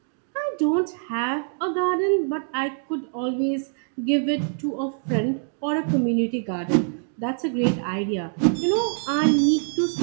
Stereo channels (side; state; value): left; silent; 57 dB below the other